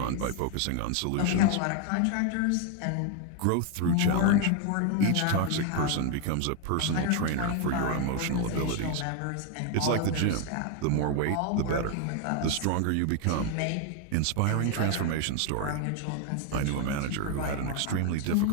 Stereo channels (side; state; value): both; different; correlation 0.01